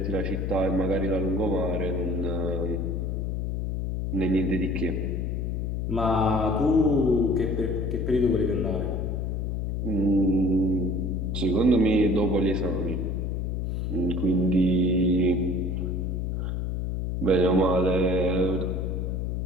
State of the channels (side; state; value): left; noise; hum, 1 dB below the sound